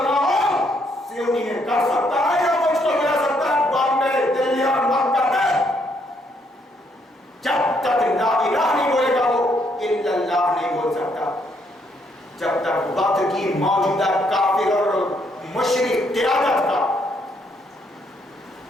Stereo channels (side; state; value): both; normal; correlation 0.72